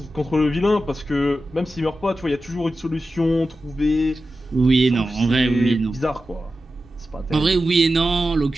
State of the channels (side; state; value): both; normal; correlation 0.92